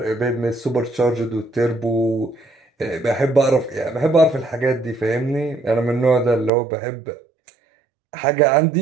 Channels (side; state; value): left; drops out; at 6.5 s